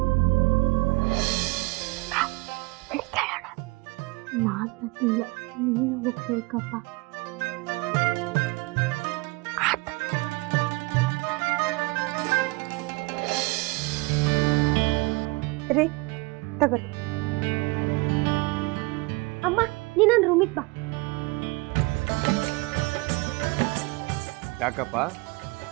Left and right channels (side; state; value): left; quieter; 25.1 dB